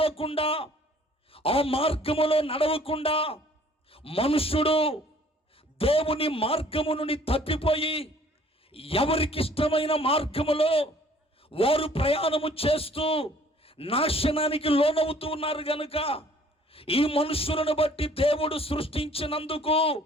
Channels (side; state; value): both; normal; correlation 0.56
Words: ఆ మార్గములో నడవకుండా, మనుషుడు దేవుని మార్గము నుండి తప్పిపోయి ఎవరికి ఇష్టమైన మార్గములో వారు ప్రయాణము చేస్తూ నాశనానికి లోనవుతూ ఉన్నారు గనుక ఈ మనుషులను బట్టి దేవుడు సృష్టించినందుకు